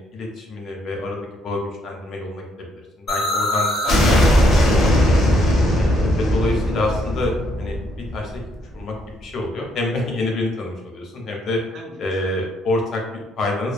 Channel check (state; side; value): normal; both; correlation 0.72